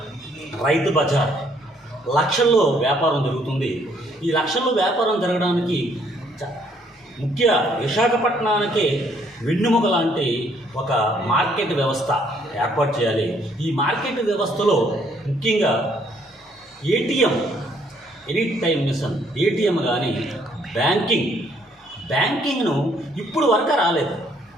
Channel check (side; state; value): both; normal; correlation 0.66